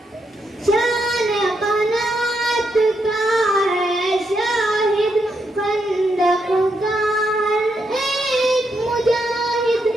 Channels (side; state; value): both; normal; correlation 0.80